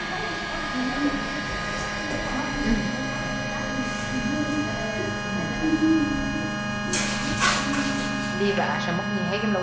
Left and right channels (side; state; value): right; noise; hum, 19 dB below the sound